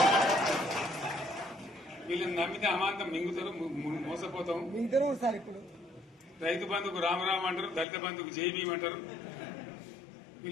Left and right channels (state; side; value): drops out; right; at 7.9 s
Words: వీళ్ళని నమ్మితే అమాంతం మింగుతారు, మోసపోతాం. రైతు బంధుకు రామరామ్ అంటారు, దళిత బంధుకు జైబీం అంటారు.